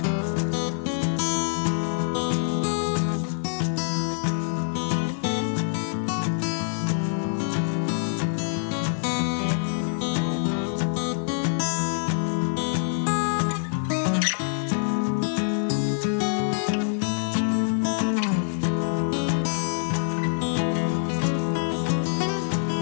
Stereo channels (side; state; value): right; silent; digital silence